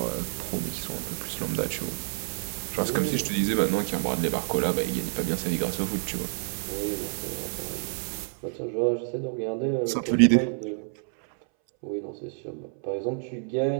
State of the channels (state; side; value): silent; left; 59 dB below the other